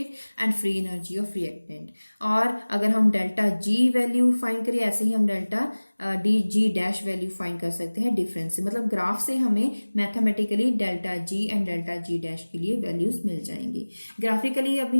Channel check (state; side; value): inverted; both; correlation -1.00